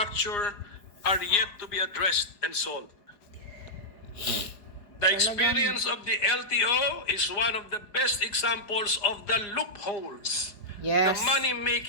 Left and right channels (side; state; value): right; late; 4.9 ms